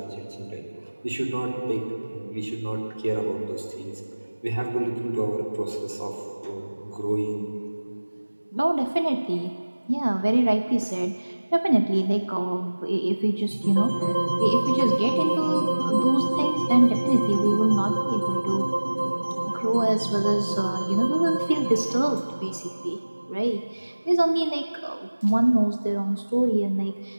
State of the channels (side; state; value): both; inverted; correlation -1.00